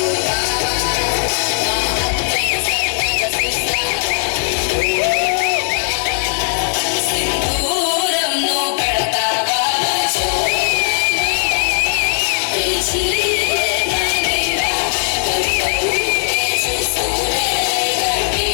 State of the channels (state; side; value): silent; right; 68 dB below the other